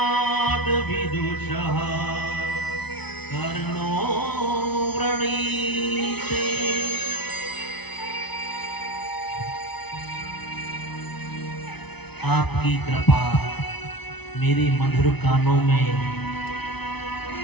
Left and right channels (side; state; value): right; late; 0.99 ms